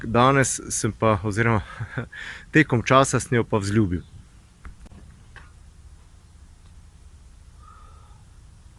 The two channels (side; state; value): both; identical; correlation 1.00